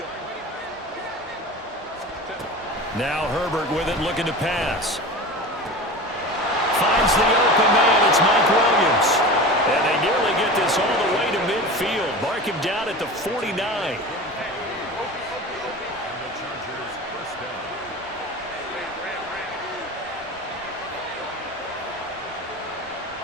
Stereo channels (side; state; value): both; normal; correlation 0.32